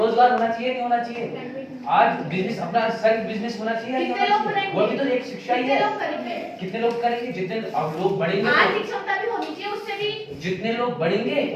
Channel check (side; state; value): both; identical; correlation 1.00